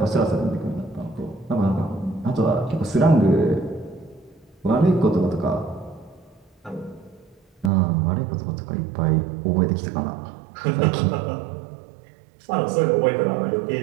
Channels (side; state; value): left; drops out; at 7.7 s